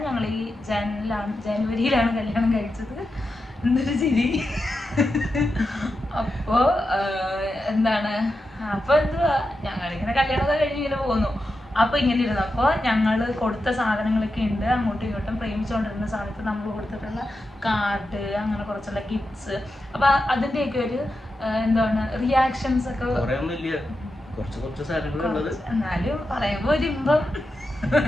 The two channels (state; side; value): normal; both; correlation 0.89